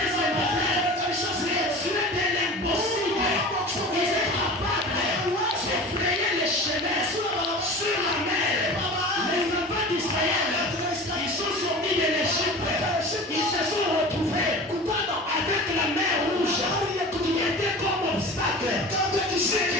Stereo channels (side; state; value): both; normal; correlation 0.36